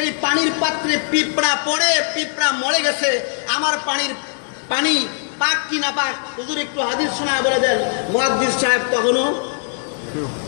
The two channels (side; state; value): right; silent; digital silence